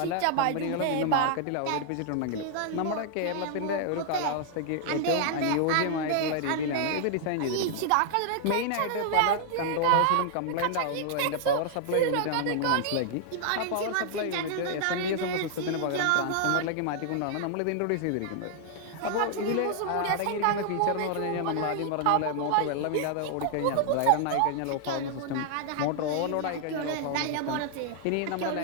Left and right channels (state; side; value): different; both; correlation -0.01